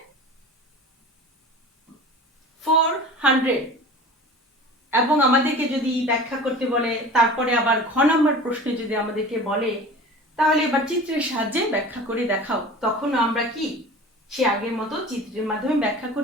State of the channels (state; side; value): normal; both; correlation 0.38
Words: 400। এবং আমাদেরকে যদি ব্যাখ্যা করতে বলে, তারপরে আবার ঘ নম্বর প্রশ্নে যদি আমাদেরকে বলে, তাহলে এবার চিত্রের সাহায্যে ব্যাখ্যা করে দেখাও, তখন আমরা কি সে আগের মতো চিত্রের মাধ্যমে ব্যাখ্যা